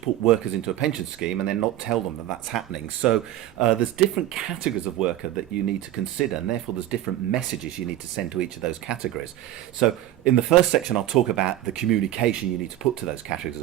put workers into a pension scheme and then not tell them that that's happening. So there's different categories of worker that you need to consider, and therefore there's different messages you need to send to each of those categories. So in the first section, I'll talk about the communication you need to put to those categories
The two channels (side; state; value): left; quieter; 13.3 dB